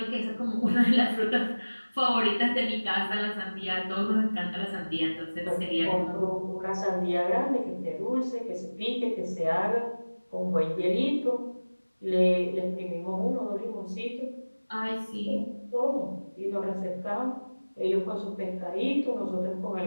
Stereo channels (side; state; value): both; inverted; correlation -1.00